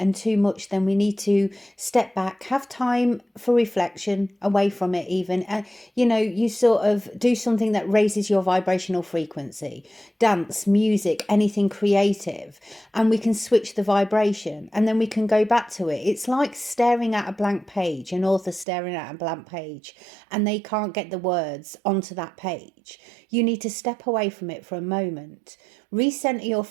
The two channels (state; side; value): drops out; left; at 18.7 s